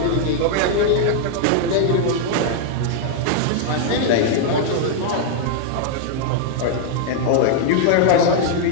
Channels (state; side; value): different; both; correlation -0.01